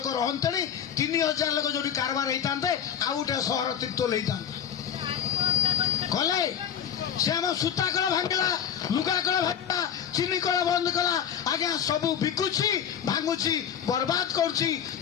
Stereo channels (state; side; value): quieter; right; 8.6 dB